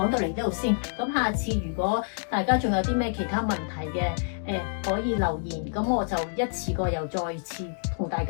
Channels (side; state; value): right; silent; digital silence